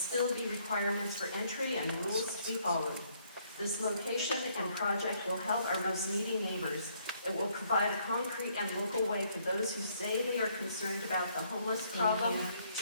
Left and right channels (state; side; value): inverted; both; correlation -0.68